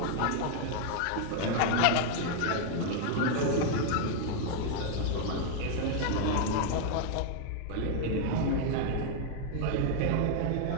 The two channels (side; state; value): both; different; correlation 0.00